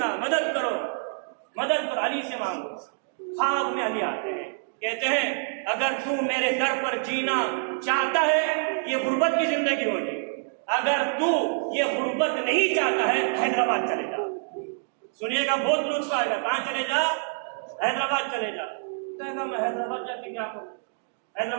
مدد کرو، علی سے مانگو۔ خواب میں علی آتے ہیں، کہتے ہیں اگر تو میرے در پر جینا چاہتا ہے یہ غربت کی زندگی ہوگی، اگر تو یہ غربت نہیں چاہتا ہے حیدرآباد چلے جا۔ سنیے گا، بہت لطف آئے گا۔ کہاں چلے جا؟ حیدرآباد چلے جا۔ کہے گا میں حیدرآباد جا کے کیا کروں؟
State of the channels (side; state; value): left; silent; digital silence